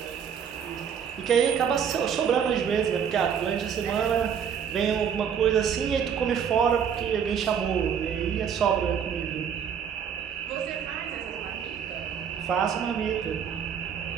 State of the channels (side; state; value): left; quieter; 7.8 dB